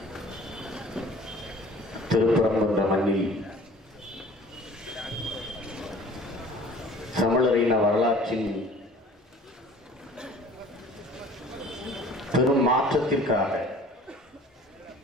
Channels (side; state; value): both; normal; correlation 0.49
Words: திருப்பரங்குன்ற மண்ணில் தமிழரின் வரலாற்றின் பெரும் மாற்றத்திற்காக